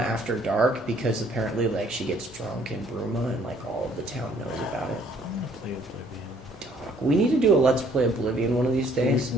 dark because apparently like she gets drunk in Bruma and like all of the town knows about it. I'm gonna play Oblivion. Dog, we need to do a Let's Play Oblivion one of these days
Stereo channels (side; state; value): both; normal; correlation 0.62